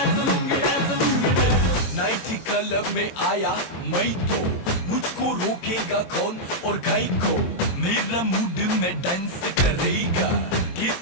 lungi dance. Night club में आया मैं तो मुझको रोकेगा कौन और गाय को, मेरा मूड में डांस करेगा,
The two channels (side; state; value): right; late; 23 ms